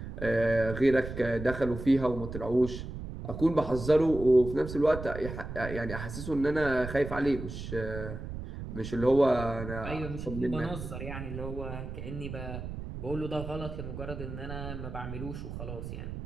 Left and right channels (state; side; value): noise; right; rumble, 8 dB below the sound